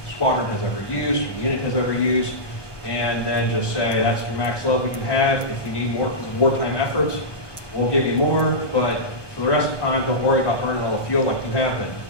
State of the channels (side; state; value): right; late; 1.2 ms